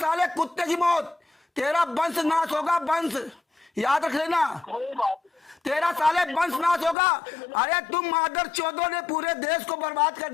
कुत्ते की मौत। तेरा वंश नाश होगा, वंश याद रख लेना, तेरा साले वंश नाश होगा। अरे तुम मादर चौधों ने पूरे देश को बर्बाद कर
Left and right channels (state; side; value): drops out; right; at 7.0 s